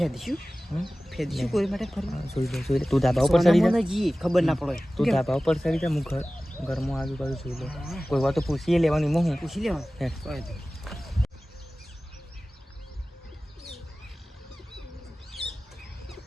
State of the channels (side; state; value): both; normal; correlation 0.97